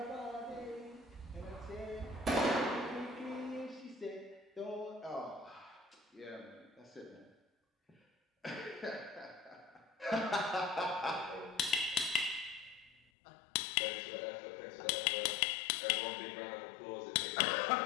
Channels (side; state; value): right; drops out; at 13.0 s